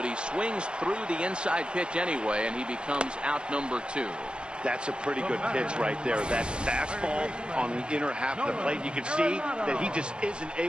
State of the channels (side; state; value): left; late; 0.049 ms